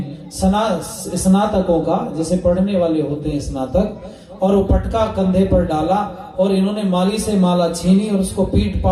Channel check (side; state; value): both; identical; correlation 1.00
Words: स्नातकों का, जैसे पढ़ने वाले होते हैं स्नातक, और वो पटका कंधे पर डाला, और इन्होंने माली से माला छीनी और उसको पीट